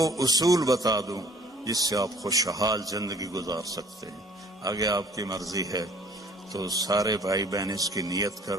اصول بتا دوں جس سے آپ خوشحال زندگی گزار سکتے ہیں. آگے آپ کی مرضی ہے تو سارے بھائی بہن اس کی نیت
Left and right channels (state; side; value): normal; both; correlation 0.54